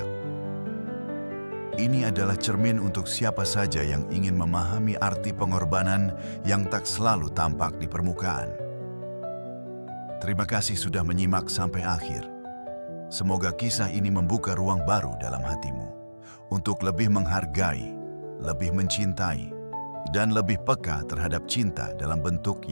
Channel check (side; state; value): both; inverted; correlation -1.00